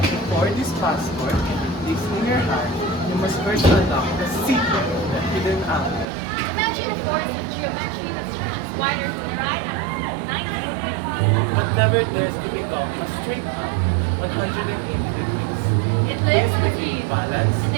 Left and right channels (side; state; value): left; drops out; at 6.1 s